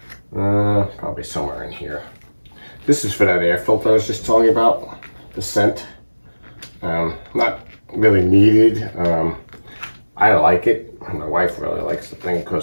probably somewhere in here. This is for that air filter I was just telling you about, the scent. Not really needed. I like it. My wife really likes the thing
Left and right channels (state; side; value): inverted; both; correlation -1.00